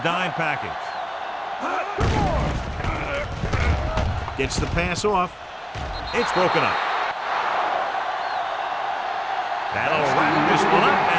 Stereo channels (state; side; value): identical; both; correlation 1.00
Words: dime package. Gets the pass off. It's broken up. That'll wrap this one up,